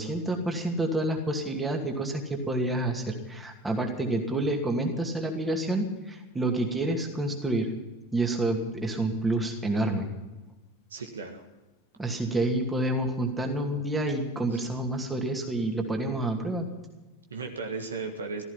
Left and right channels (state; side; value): normal; both; correlation 0.45